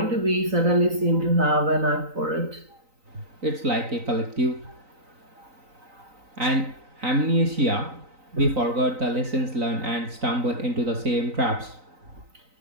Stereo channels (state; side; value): late; left; 3.9 ms